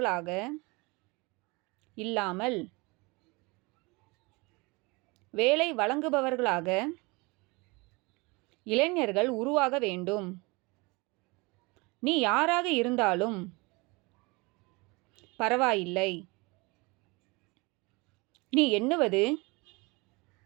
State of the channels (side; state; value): left; quieter; 26.1 dB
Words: இல்லாமல் வேலை வழங்குபவர்களாக இளைஞர்கள் உருவாக வேண்டும். நீ யாராக இருந்தாலும் பரவாயில்லை. நீ எண்ணுவது